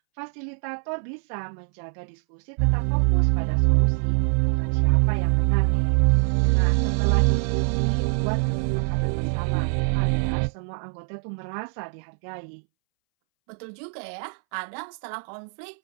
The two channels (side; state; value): left; silent; 62 dB below the other